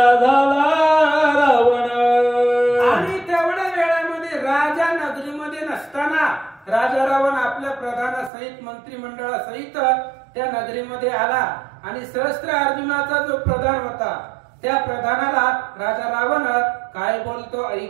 झाला रावण. आणि तेवढ्या वेळामध्ये राजा नगरीमध्ये नसताना राजा रावण आपल्या प्रधानासहित मंत्रिमंडळासहित त्या नगरीमध्ये आला आणि सहस्त्र अर्जुनाचा जो प्रधान होता त्या प्रधानाला राजा रावण काय बोलतो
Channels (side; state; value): left; drops out; at 8.3 s